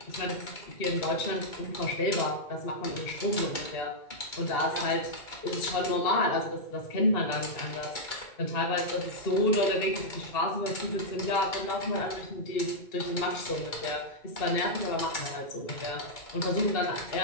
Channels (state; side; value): late; right; 2.3 ms